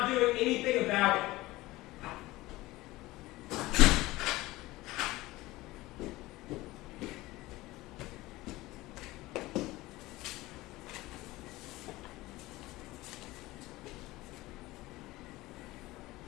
doing anything about it.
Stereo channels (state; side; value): quieter; right; 19.0 dB